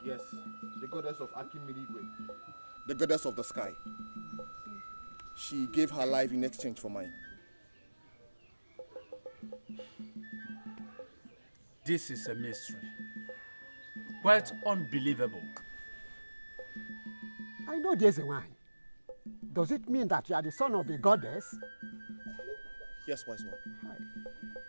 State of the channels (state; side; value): inverted; both; correlation -1.00